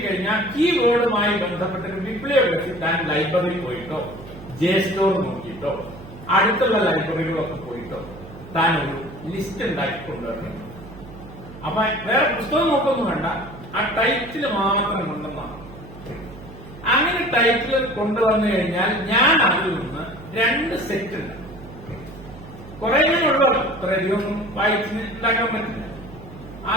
കീവേഡുമായി ബന്ധപ്പെട്ട ഒരു ബിബ്ലിയോഗ്രഫി താൻ ലൈബ്രറി പോയിട്ടോ ജെ സ്റ്റോർ നോക്കിയിട്ടോ അടുത്തുള്ള ലൈബ്രറികളൊക്കെ പോയിട്ടോ താൻ ഒരു ലിസ്റ്റ് ഉണ്ടാക്കി കൊണ്ടുവരണം. അപ്പൊ വേറെ പുസ്തകം നോക്കൊന്നും വേണ്ട, ആ ടൈറ്റിൽ മാത്രം കൊണ്ടുവന്നാണ്. അങ്ങനെ ടൈറ്റിൽ കൊണ്ടുവന്നു കഴിഞ്ഞാൽ ഞാൻ അതിൽ നിന്ന് 2 സെറ്റ് ഉണ്ട്. കുറെ ഉള്ളൂ, അത്രയധികം വായിച്ച് ഉണ്ടാക്കാൻ പറ്റില്ല.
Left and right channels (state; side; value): noise; right; hum, 16 dB below the sound